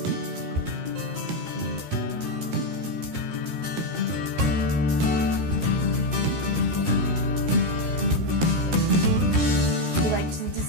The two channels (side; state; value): left; late; 13 ms